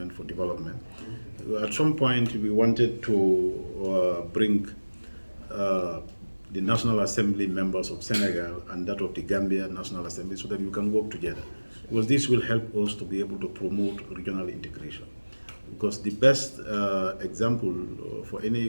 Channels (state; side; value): inverted; both; correlation -1.00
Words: for development. At some point, we wanted to bring the National Assembly members of Senegal and that of the Gambia National Assembly so that we can work together. Because this will help us to be able to promote regional integration. Because the best example for any